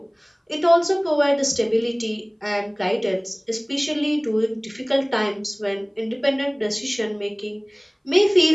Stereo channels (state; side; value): identical; both; correlation 1.00